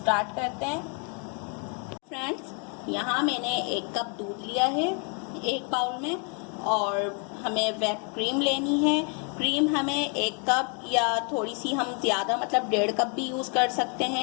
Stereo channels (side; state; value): right; quieter; 38.2 dB